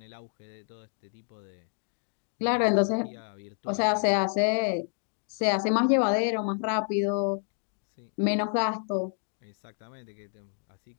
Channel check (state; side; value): silent; right; digital silence